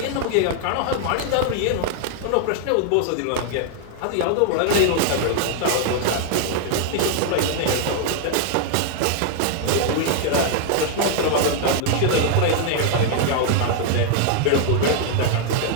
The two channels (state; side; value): different; both; correlation 0.00